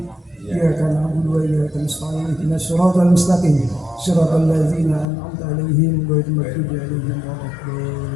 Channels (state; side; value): drops out; right; at 5.1 s